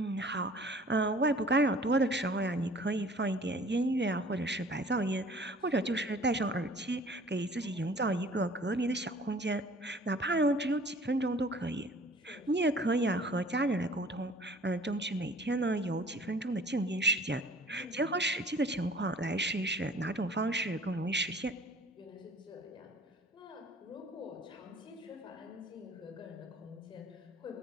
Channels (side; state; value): both; normal; correlation 0.50